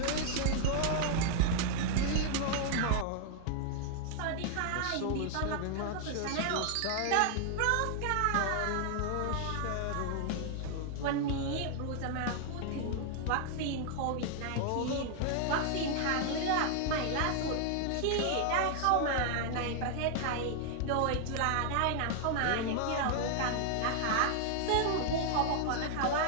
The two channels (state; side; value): different; both; correlation 0.00